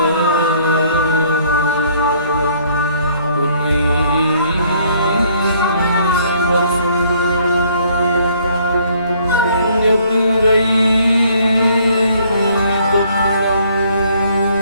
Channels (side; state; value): both; inverted; correlation -0.63